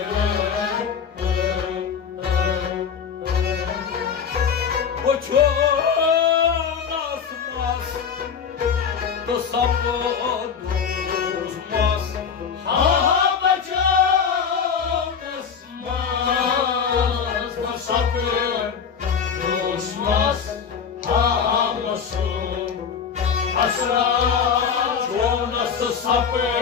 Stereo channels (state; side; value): quieter; right; 6.8 dB